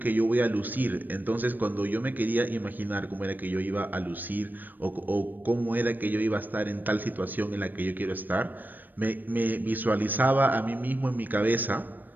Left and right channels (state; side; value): late; left; 0.090 ms